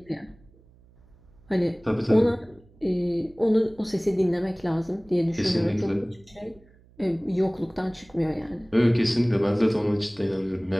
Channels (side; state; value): right; noise; hum, 28 dB below the sound